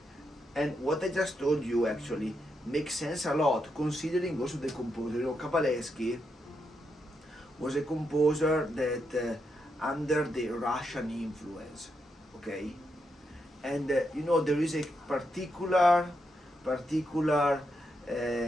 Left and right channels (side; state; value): both; normal; correlation 0.82